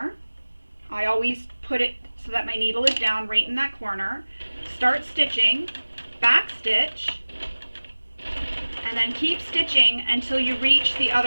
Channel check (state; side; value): inverted; both; correlation -1.00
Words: I always put it so that my needle is down right in that corner. Start stitching, back stitch, and then keep stitching until you reach the